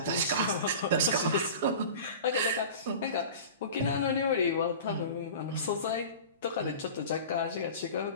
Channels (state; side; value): inverted; both; correlation -0.36